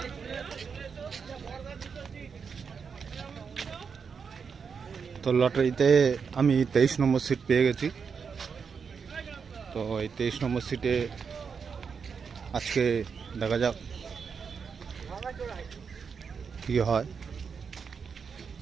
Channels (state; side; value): quieter; left; 6.0 dB